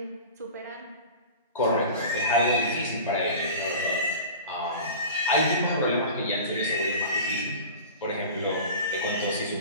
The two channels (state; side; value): inverted; both; correlation -0.35